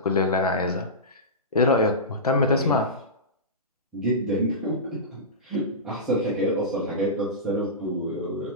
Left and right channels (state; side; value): normal; both; correlation -0.18